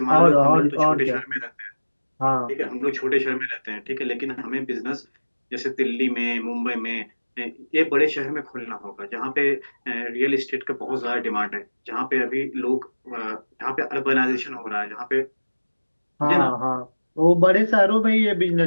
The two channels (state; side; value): inverted; both; correlation -1.00